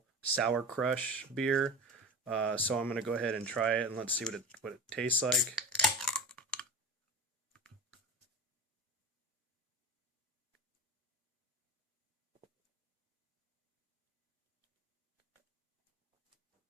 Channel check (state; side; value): normal; both; correlation 0.29